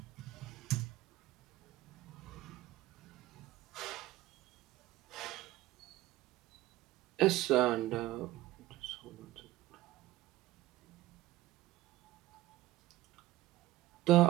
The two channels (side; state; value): left; quieter; 16.7 dB